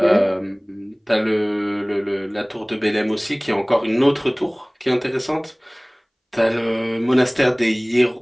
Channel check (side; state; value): both; identical; correlation 1.00